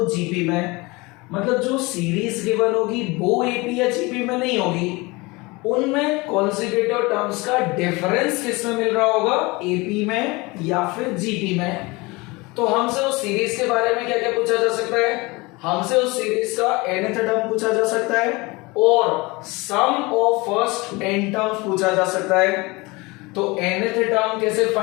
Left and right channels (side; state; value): right; quieter; 24.2 dB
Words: जीपी में। मतलब जो सीरीज गिवन होगी वो एपी या जीपी में नहीं होगी, उनमें कॉन्सेक्यूटिव टर्म्स का डिफरेंस किसमें मिल रहा होगा, एपी में या फिर जीपी में। तो हमसे उस सीरीज के बारे में क्या क्या पूछा जा सकता है, हमसे उस सीरीज का nth टर्म पूछा जा सकता है और sum of first n terms पूछा जा सकता है। तो nth टर्म कैसे